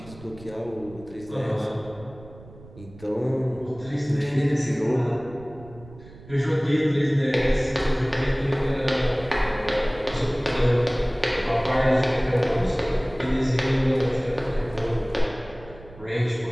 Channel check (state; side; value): noise; right; rumble, 20 dB below the sound